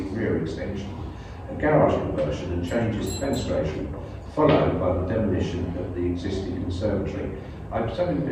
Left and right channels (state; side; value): identical; both; correlation 1.00